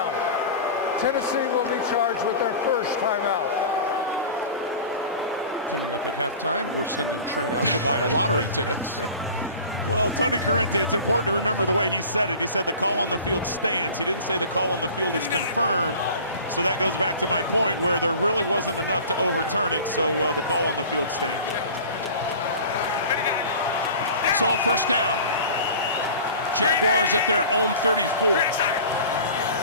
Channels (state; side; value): inverted; both; correlation -0.39